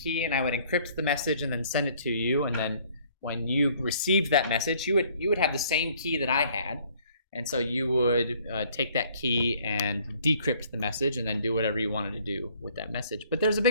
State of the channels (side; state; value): both; inverted; correlation -0.60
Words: and I would encrypt the message and then send it to you. And then when you received that message, you would have the same key that I had. And so you would take that key and decrypt the message and then do whatever you wanted to do with that message. But there's a